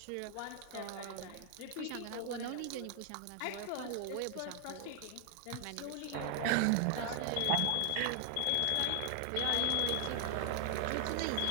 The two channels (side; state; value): both; different; correlation 0.00